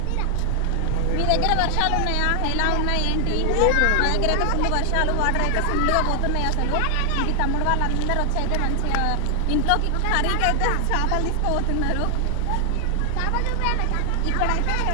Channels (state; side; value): different; both; correlation 0.00